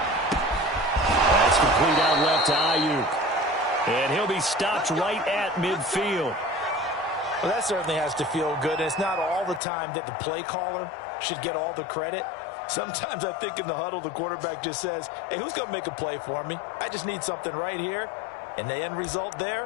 That's complete out left to Ayuk. And he'll be stopped right at midfield. Well, that certainly has to feel good. And it's not all the time that the play caller should get all the credit. Sometimes I think in the huddle, the quarterback just says, hey, who's going to make a play for me? I just need something right here. And the end result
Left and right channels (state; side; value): drops out; right; at 9.6 s